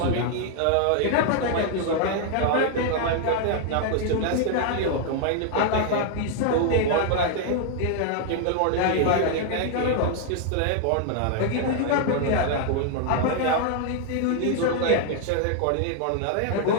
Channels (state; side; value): different; both; correlation 0.00